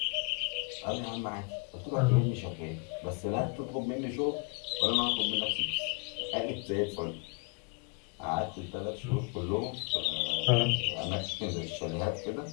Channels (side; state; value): right; quieter; 31.7 dB